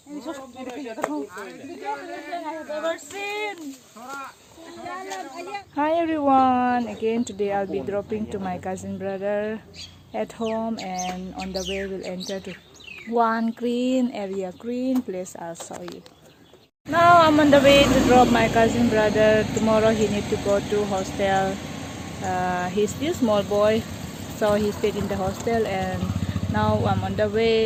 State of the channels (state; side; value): identical; both; correlation 1.00